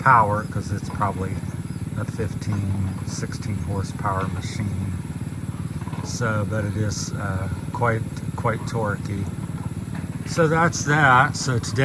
because it's probably a 16 horsepower machine. So, but it is quite torquey. So that's that. So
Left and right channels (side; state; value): both; identical; correlation 1.00